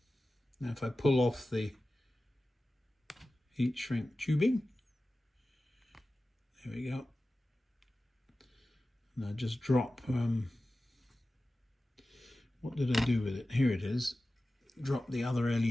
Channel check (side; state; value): both; normal; correlation 0.95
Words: Now if I pull off the heat shrink tubing, there we go. And I just drop, what did I do with it? Here it is. Drop the other